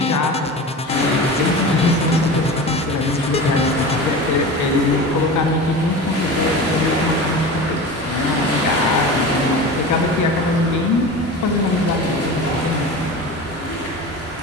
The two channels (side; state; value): both; normal; correlation 0.31